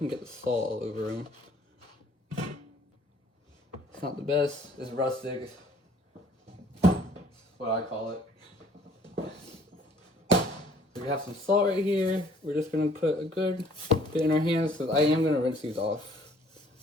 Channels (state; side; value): normal; both; correlation 0.58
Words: get the salt all over them. It's not the best, it's rustic. What I call it. So we have some salt right here. We're just gonna put a good bit in our hands because I am gonna rinse these off